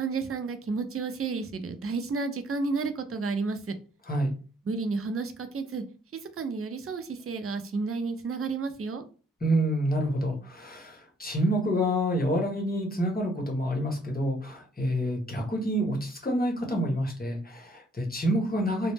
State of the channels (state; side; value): normal; both; correlation 0.65